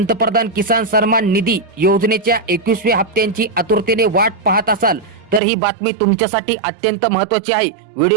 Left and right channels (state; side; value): drops out; left; at 5.4 s